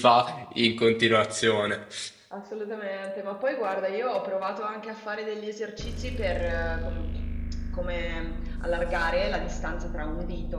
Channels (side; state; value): both; identical; correlation 1.00